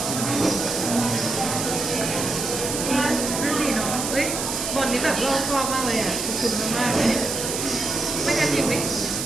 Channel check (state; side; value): noise; right; hiss, 3 dB below the sound